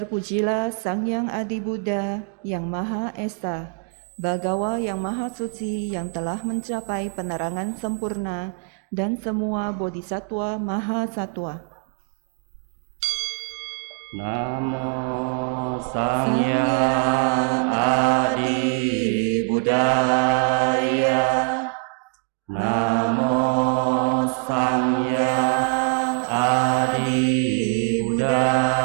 Sang Yang Adi Buddha yang Maha Esa, Bhagawa yang Maha Suci yang telah mencapai penerangan sempurna dan semua bodhisattva Maha Satwa. Namo Sangyang Adi Buddhaya. Namo Sangyang Adi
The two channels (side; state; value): left; quieter; 39.6 dB